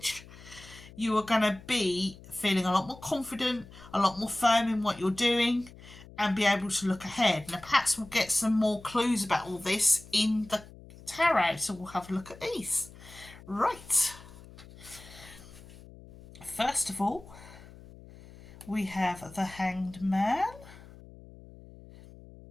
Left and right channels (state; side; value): noise; left; hum, 19 dB below the sound